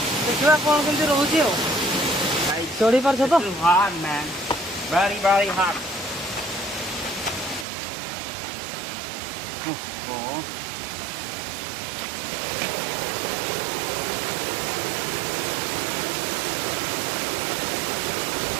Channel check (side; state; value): left; drops out; at 7.7 s